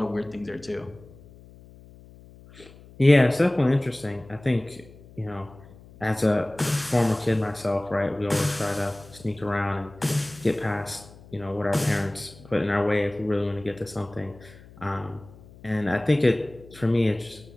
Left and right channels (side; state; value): left; noise; hum, 22 dB below the sound